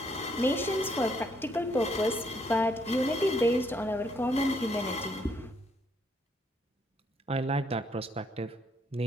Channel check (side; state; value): both; normal; correlation 0.71